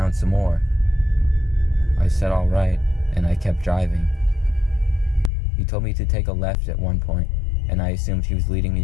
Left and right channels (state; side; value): drops out; right; at 5.3 s